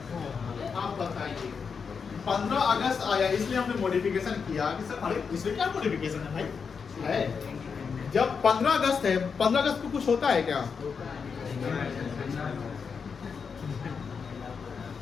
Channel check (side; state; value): right; quieter; 5.9 dB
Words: आप बताइए। 15 अगस्त आया, इसलिए हमने मॉडिफिकेशन किया कि सर अरे इसमें क्या मॉडिफिकेशन है भाई? है जब 15 अगस्त है, 15 अगस्त को कुछ होता है क्या?